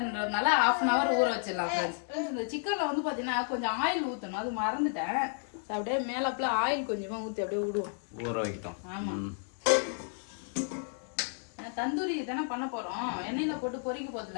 1/2 hour ஊற வச்சிடலாம் ஃப்ரெண்ட்ஸ். இந்த சிக்கனில் வந்து பார்த்தீங்கன்னா கொஞ்சம் ஆயில் ஊற்றணும், அது மறந்துட்டேன். ஸோ அப்படியே மேலாப்புல ஆயில் கொஞ்சமாக ஊற்றி அப்படியே விடுவோம், ஊற வைக்கிட்டோம். ஆமாம், தந்தூரி தானே பண்ண போறோம். எண்ணெயில போட்டு பொரிக்க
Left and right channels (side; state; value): right; silent; 56 dB below the other